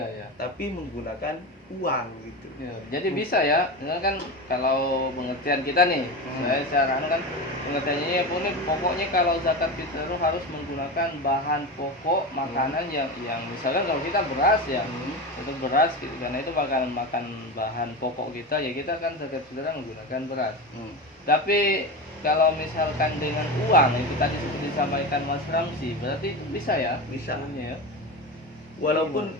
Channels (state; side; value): normal; both; correlation 0.23